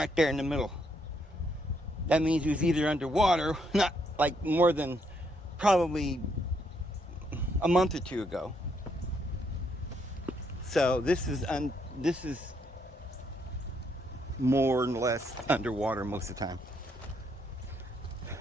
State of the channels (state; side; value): normal; both; correlation 0.74